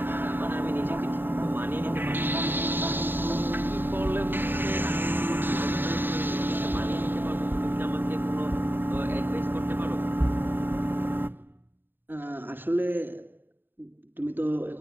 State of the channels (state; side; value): late; left; 0.095 ms